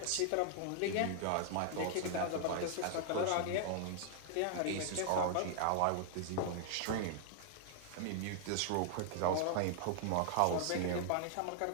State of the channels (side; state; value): both; different; correlation -0.01